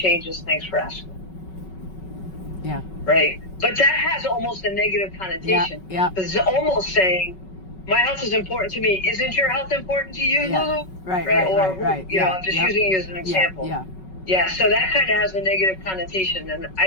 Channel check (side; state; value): right; late; 5.3 ms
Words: Thanks for asking. Yeah. right? But that has almost a negative connotation. Yeah. Because it's almost saying, my health is important to me. Isn't your health important to you, Yeah. Lulu? Right. You know, I'm just using you as an example. Yeah, so that kind of has a negative connotation, and I